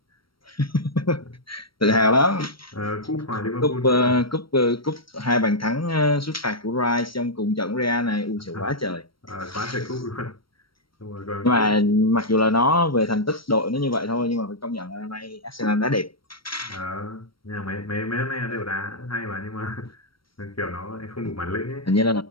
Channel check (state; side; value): late; right; 0.74 ms